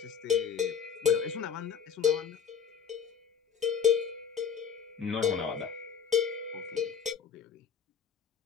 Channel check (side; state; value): right; quieter; 7.1 dB